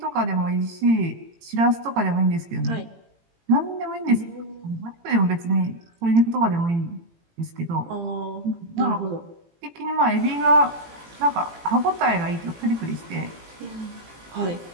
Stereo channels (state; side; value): late; left; 18 ms